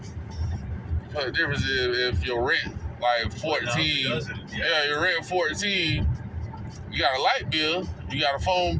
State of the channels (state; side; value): identical; both; correlation 1.00